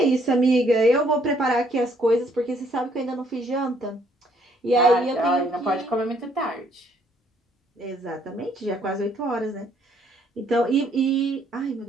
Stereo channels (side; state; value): both; normal; correlation 0.66